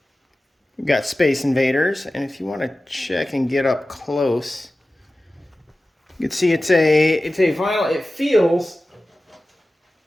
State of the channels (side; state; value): both; normal; correlation 0.95